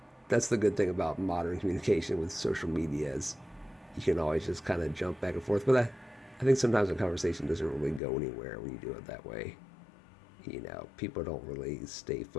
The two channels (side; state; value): right; drops out; at 8.0 s